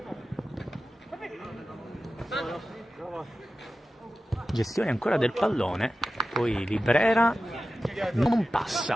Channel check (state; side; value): normal; both; correlation 0.94